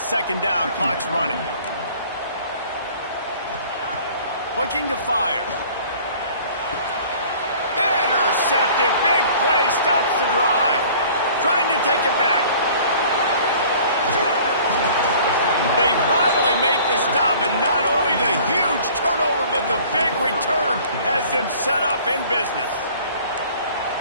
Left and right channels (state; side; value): inverted; both; correlation -0.50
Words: 2nd down, clock's running. Looking to fire. Intercepted, big play, stops the drive. Trying to take it back. They finally make the stop, and not only the huge turnover, but the big return has them set up in business.